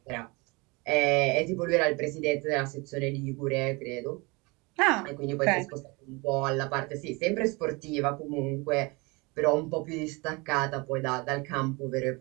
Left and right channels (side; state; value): left; quieter; 26.6 dB